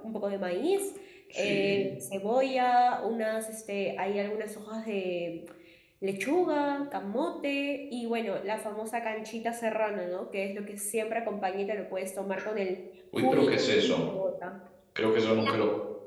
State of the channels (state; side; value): identical; both; correlation 1.00